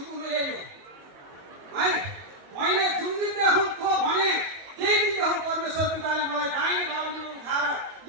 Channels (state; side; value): late; left; 21 ms